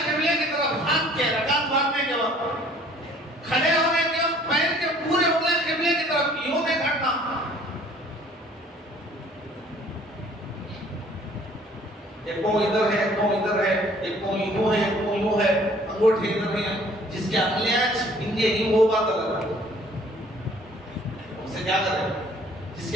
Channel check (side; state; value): both; normal; correlation 0.55